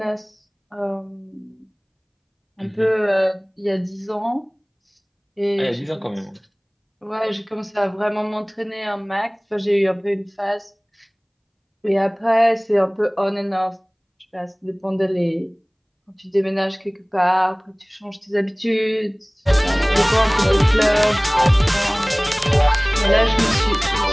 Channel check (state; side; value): identical; both; correlation 1.00